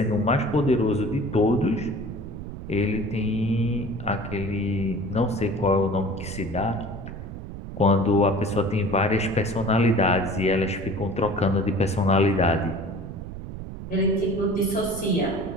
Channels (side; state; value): right; noise; rumble, 10 dB below the sound